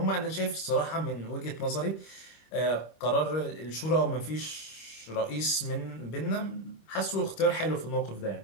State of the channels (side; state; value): right; late; 25 ms